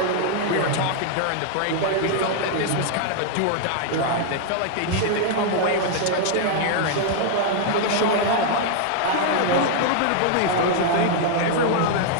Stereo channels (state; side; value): different; both; correlation -0.01